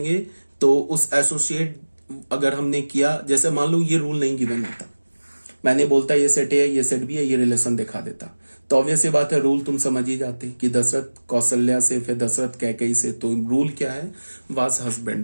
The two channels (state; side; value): inverted; both; correlation -1.00